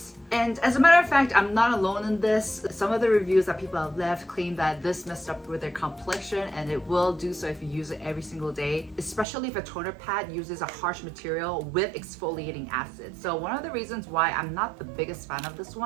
And as a matter of fact, I'm not alone in this. Some of the reviews that people have left claim that this messed up with their complexion, and it will do so if you use it every single day, especially if a toner pad uses a harsh material with exfoliating acid. So one of the reasons why I'm not the biggest fan of this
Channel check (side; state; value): left; drops out; at 9.2 s